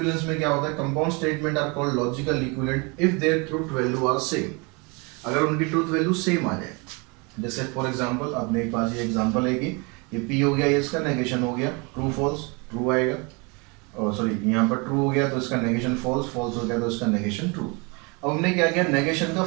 में क्या होता है, compound statement are called logical equivalent if their truth value are same. अगर उनकी ट्रूथ वैल्यू सेम आ जाए, जैसे फॉर एग्जांपल आपने एक पास ये एग्जांपल है कि ये P हो गया, ये इसका नेगेशन हो गया, ट्रू फॉल्स, ट्रू आएगा। और सॉरी यहाँ पर ट्रू हो गया तो इसका नेगेशन फॉल्स, फॉल्स हो गया तो इसका नेगेशन ट्रू। अब हमने क्या किया, नेगेशन का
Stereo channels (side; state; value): left; quieter; 30.0 dB